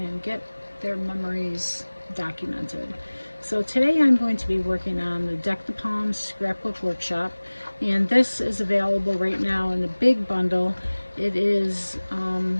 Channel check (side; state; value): both; inverted; correlation -1.00